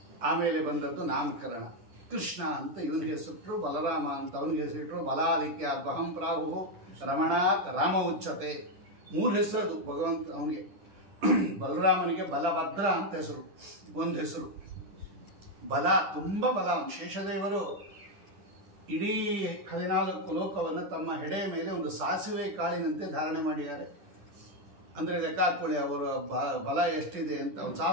ಆಮೇಲೆ ಬಂದದ್ದು ನಾಮಕರಣ. ಕೃಷ್ಣ ಅಂತ ಇವನಿಗೆ ಹೆಸರಿಟ್ರು, ಬಲರಾಮ ಅಂತ ಅವನಿಗೆ ಹೆಸರಿಟ್ರು. ಬಲಾದಿತ್ಯ ಬಹಂ ಪ್ರಾಹು ರಮಣಾತ್ ರಾಮ ಉಚ್ಚತೆ. 3 ಹೆಸರದು ಭಗವಂತ ಅವನಿಗೆ. ಬಲರಾಮನಿಗೆ ಬಲಭದ್ರ ಅಂತ ಹೆಸರು, ಒಂದು ಹೆಸರು. ಬಲ, ತುಂಬ ಬಲ. ಶೇಷದೇವರು ಇಡೀ 14 ಲೋಕವನ್ನು ತಮ್ಮ ಹೆಡೆಯ ಮೇಲೆ ಒಂದು ಸಾಸಿವೆ ಕಾಳಿನಂತೆ ಧಾರಣೆ ಮಾಡಿದ್ದಾರೆ. ಅಂದರೆ ಲೆಕ್ಕ ಹಾಕ್ಕೊಳ್ಳಿ ಅವರ ಬಲ ಎಷ್ಟಿದೆ ಅಂತ. ಒಂದು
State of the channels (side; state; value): left; late; 10 ms